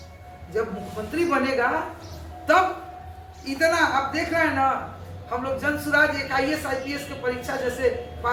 जब मुख्यमंत्री बनेगा, तब इतना आप देख रहे हैं ना, हम लोग जन सुराज एक IAS IPS की परीक्षा जैसे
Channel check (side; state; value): both; identical; correlation 1.00